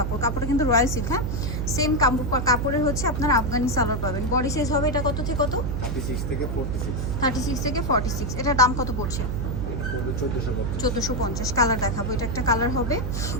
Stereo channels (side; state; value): right; noise; hum, 2 dB below the sound